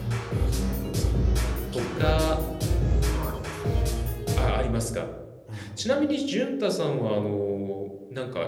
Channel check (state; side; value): identical; both; correlation 1.00